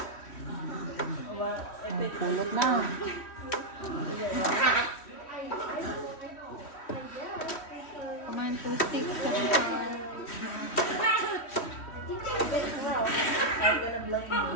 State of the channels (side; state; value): right; late; 3.1 ms